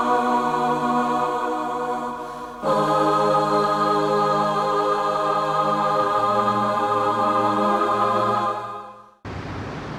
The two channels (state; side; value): identical; both; correlation 1.00